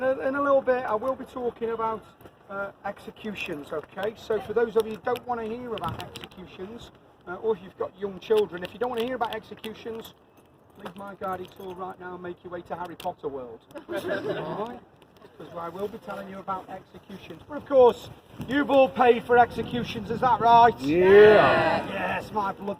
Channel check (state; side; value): identical; both; correlation 1.00